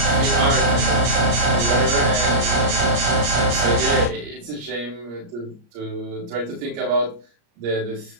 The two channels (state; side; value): late; left; 34 ms